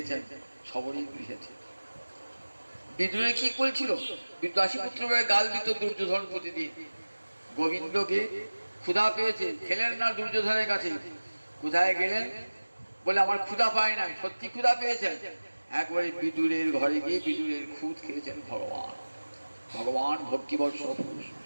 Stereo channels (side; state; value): both; inverted; correlation -1.00